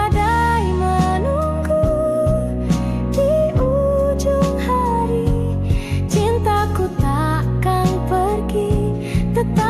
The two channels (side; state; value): both; identical; correlation 1.00